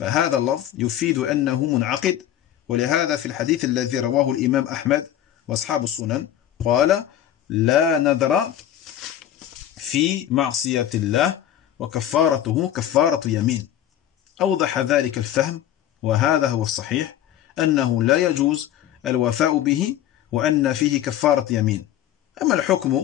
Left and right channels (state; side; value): quieter; right; 11.5 dB